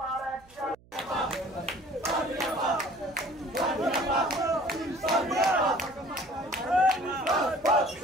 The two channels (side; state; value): right; noise; hum, 27 dB below the sound